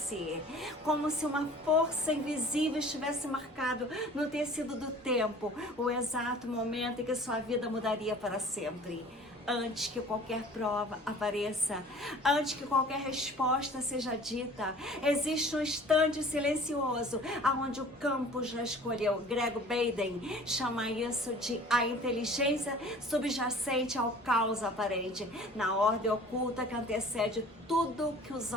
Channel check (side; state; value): both; normal; correlation 0.47